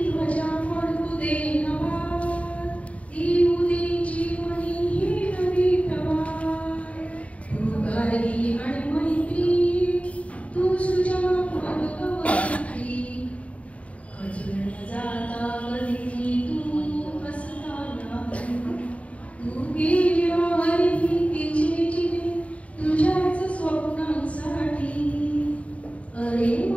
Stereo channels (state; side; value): late; right; 0.065 ms